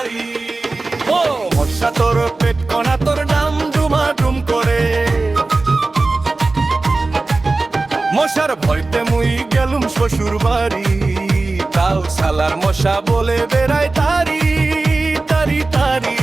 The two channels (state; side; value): quieter; left; 3.4 dB